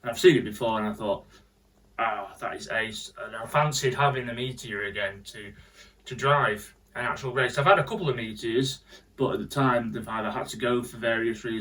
and I've seen it before, and I thought, that is ace, and I fancied having a Meteor again to drive an actual race. I've had a couple of Meteors, but at the time they've either had to go for various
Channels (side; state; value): both; identical; correlation 1.00